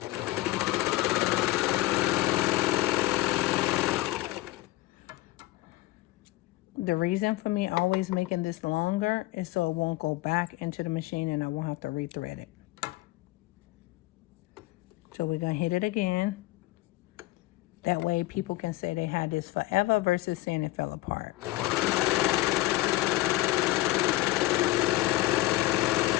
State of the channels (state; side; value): quieter; right; 17.8 dB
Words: The reason for me always making this longer is so it won't go back into the machine and I won't have to rethread it. So we're gonna hit it again. That way people can say they had this forever versus saying it fell apart.